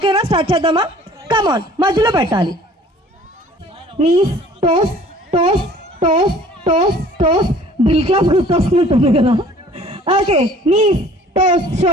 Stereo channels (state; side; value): normal; both; correlation 0.51